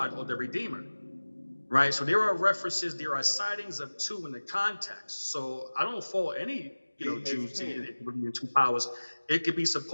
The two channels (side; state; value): both; inverted; correlation -1.00